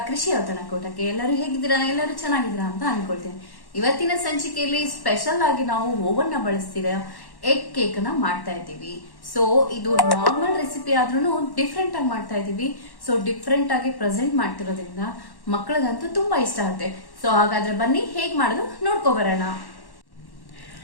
ಕೃಷಿ ಔತಣಕೂಟಕ್ಕೆ. ಎಲ್ಲರೂ ಹೇಗಿದ್ದೀರಾ? ಎಲ್ಲರೂ ಚೆನ್ನಾಗಿದ್ದೀರಾ ಅಂತ ಅನ್ಕೊಳ್ತೇನೆ. ಇವತ್ತಿನ ಸಂಚಿಕೆಯಲ್ಲಿ ಸ್ಪೆಷಲ್ ಆಗಿ ನಾವು ಓವನ್ ನ ಬಳಸ್ತಿರೋ ಎಗ್ ಕೇಕ್ ನ ಮಾಡ್ತಾ ಇದ್ದೀವಿ. ಸೊ ಇದು ನಾರ್ಮಲ್ ರೆಸಿಪಿ ಆದ್ರೂ ಡಿಫ್ರೆಂಟ್ ಆಗಿ ಮಾಡ್ತಾ ಇದೀವಿ. ಸೊ ಡಿಫ್ರೆಂಟ್ ಆಗಿ ಪ್ರೆಸೆಂಟ್ ಮಾಡ್ತಿರೋದ್ರಿಂದ ಮಕ್ಕಳಿಗಂತೂ ತುಂಬಾ ಇಷ್ಟ ಆಗುತ್ತೆ. ಸೊ ಹಾಗಾದ್ರೆ ಬನ್ನಿ ಹೇಗ್ ಮಾಡೋದು ನೋಡ್ಕೊಬರೋಣ.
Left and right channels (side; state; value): right; late; 1.1 ms